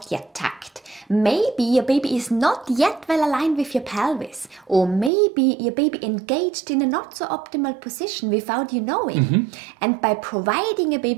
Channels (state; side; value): drops out; left; at 5.1 s